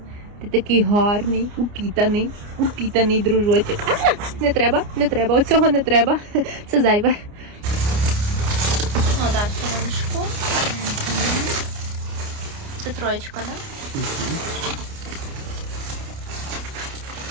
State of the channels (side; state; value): left; late; 29 ms